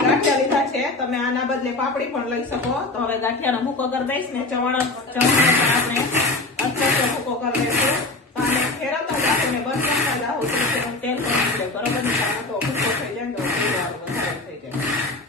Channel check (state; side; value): quieter; right; 3.1 dB